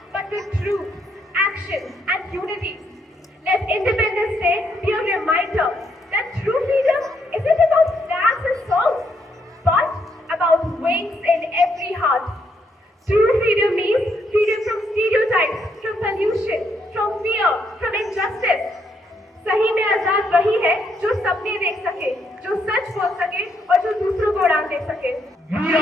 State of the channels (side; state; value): both; normal; correlation 0.75